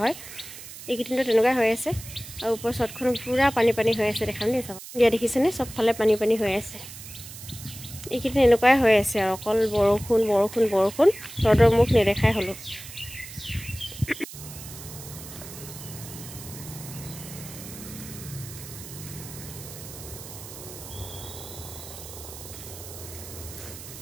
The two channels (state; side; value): noise; right; hiss, 13 dB below the sound